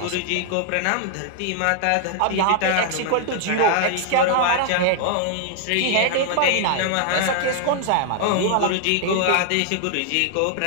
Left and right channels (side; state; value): both; different; correlation 0.00